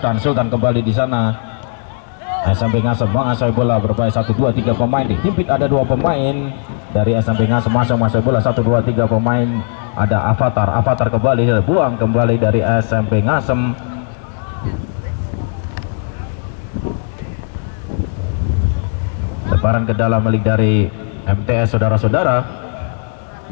kembali di sana. SMP Ngasem menguasai bola berbahaya 1, 2, 3 pemain dihimpit. Ada 2 pemain dari SMP Ngasem masih menguasai bola 1, 2, 3 pemain. Ada Avatar kembali buang kembali dari SMP Ngasem. Lemparan ke dalam milik dari MTS saudara-saudara.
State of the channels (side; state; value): right; silent; digital silence